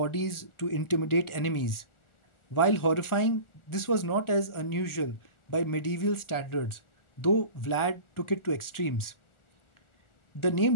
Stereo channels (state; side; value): late; right; 1.4 ms